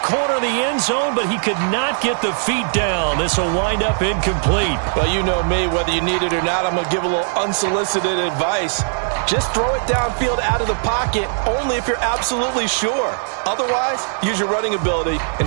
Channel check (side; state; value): left; silent; 58 dB below the other